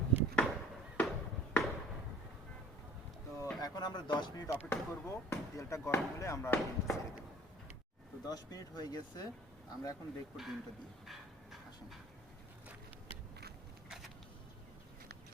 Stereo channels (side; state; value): both; normal; correlation 0.49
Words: তো এখন আমরা 10 মিনিট অপেক্ষা করব, তেলটা গরম হলে আমরা ডিমটা ছেড়ে দেবো। তো 10 মিনিট হয়ে গেছে, আমরা এখন দেখবো ডিমটা দিয়ে। আসুন।